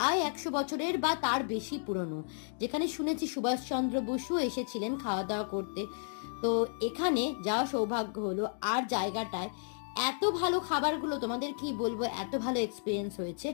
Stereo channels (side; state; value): right; silent; digital silence